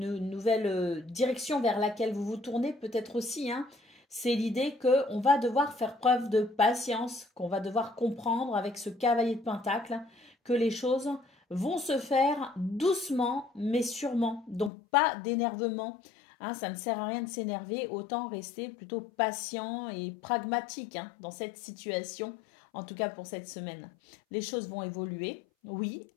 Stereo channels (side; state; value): right; drops out; at 14.7 s